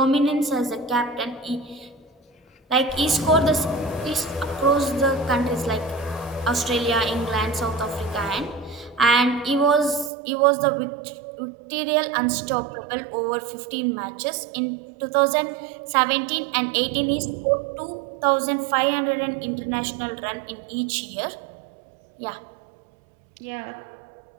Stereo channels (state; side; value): drops out; left; at 10.1 s